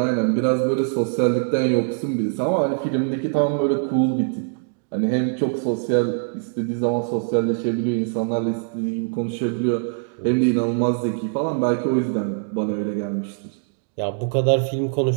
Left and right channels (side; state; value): left; silent; digital silence